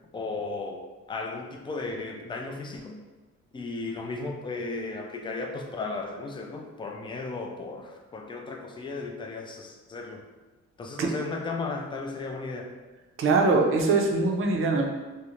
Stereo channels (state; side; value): normal; both; correlation 0.26